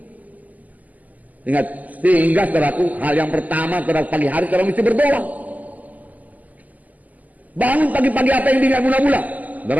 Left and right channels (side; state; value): left; late; 0.079 ms